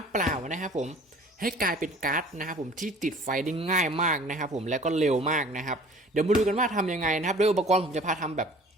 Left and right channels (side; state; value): both; normal; correlation 0.48